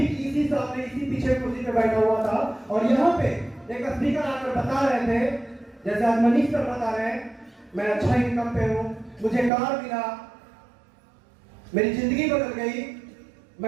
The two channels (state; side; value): drops out; left; at 9.5 s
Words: इसी सामने, इसी पीछे कुर्सी पे बैठा हुआ था, और यहाँ पे एक स्पीकर आकर बता रहे थे, जैसे आज मनीष सर बता रहे हैं, मैं अच्छा इनकम पे हूँ, मुझे कार मिला, मेरी जिंदगी बदल गई।